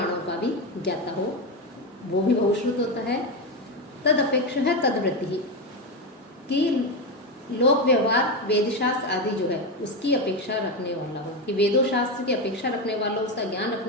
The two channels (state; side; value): normal; both; correlation 0.13